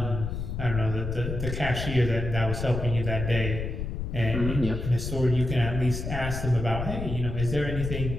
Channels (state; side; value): noise; left; rumble, 4 dB below the sound